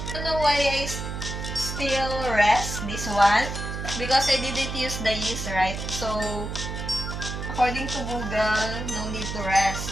don't know why I still rest this one. Because I didn't use the yeast, right? So, according to Google, no need to rest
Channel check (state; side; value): noise; right; hum, 5 dB below the sound